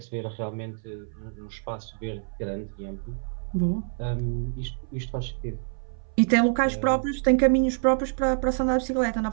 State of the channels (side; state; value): left; silent; 59 dB below the other